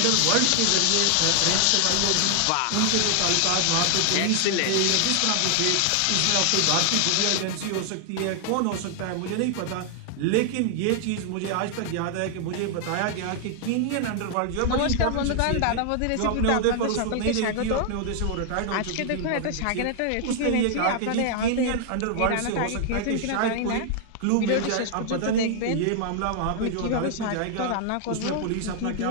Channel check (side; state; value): both; different; correlation 0.00